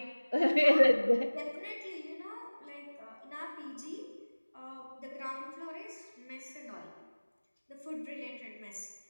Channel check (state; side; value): inverted; both; correlation -1.00